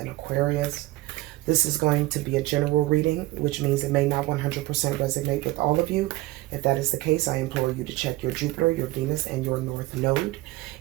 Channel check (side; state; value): left; quieter; 19.1 dB